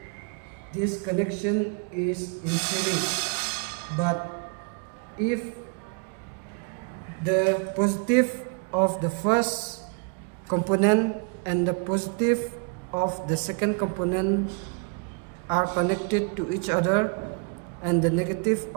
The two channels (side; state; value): left; quieter; 36.4 dB